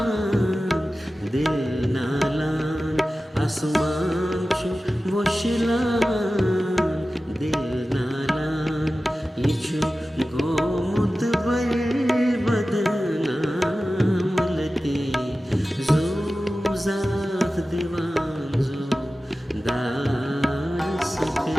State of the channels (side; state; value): both; normal; correlation 0.95